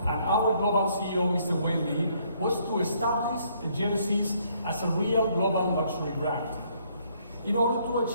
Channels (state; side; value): inverted; both; correlation -0.67